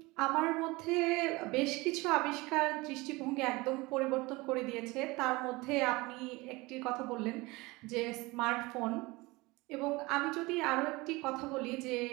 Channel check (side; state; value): left; quieter; 22.8 dB